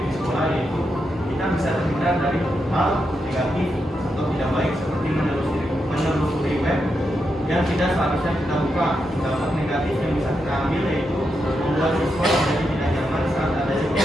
sekolah yaitu kita bisa terhindar dari hal negatif atau tidak baik seperti menelusuri web yang tidak seharusnya kita buka. Dampak negatif yang bisa kita ambil yaitu membuat siswa menjadi tidak nyaman saat adanya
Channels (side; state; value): both; normal; correlation 0.84